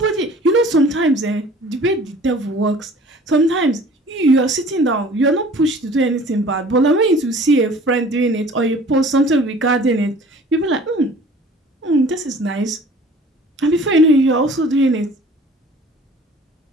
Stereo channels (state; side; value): normal; both; correlation 0.48